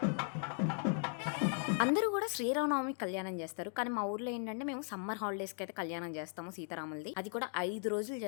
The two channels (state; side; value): silent; right; 53 dB below the other